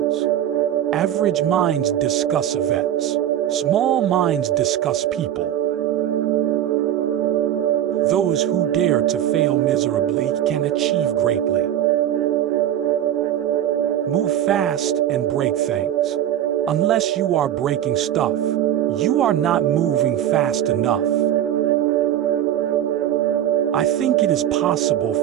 Average minds discuss events. Small minds discuss people. Those who dare to fail miserably can achieve greatly. Move fast and break things. Unless you are breaking stuff, you are not moving fast enough. I think it is possible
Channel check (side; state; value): left; quieter; 11.3 dB